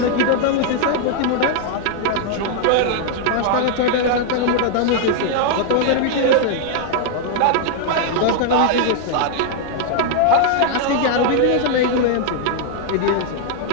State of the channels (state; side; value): different; both; correlation 0.00